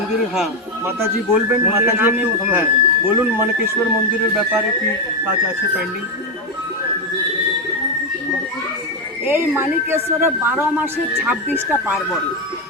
হ্যাঁ মাতাজি বলবেন, মাতাজি একটু হ্যাঁ বলুন মানিকেশ্বর মন্দিরের ব্যাপারে কি কাজ আছে পেন্ডিং। এই মানিকেশ্বরে 12 মাসে 26টা পার্বণ,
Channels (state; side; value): normal; both; correlation 0.07